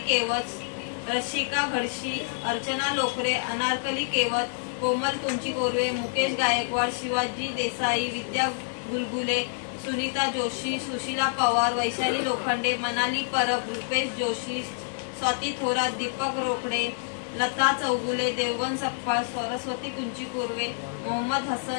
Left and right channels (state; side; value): silent; right; digital silence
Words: केवत, रशिका घडशी, अर्चना लोकरे, अनारकली केवत, कोमल कुंची कोरवे, मुकेश गायकवाड, शिवाजी देसाई, विद्या गुलगुले, सुनीता जोशी, सुशीला पवार, वैशाली लोखंडे, मनाली परब, रुपेश जोशी, स्वाती थोरात, दीपक रोकडे, लता चौगुले, देवगण सपकाळ, सरस्वती कुंची कोरवे, मोहम्मद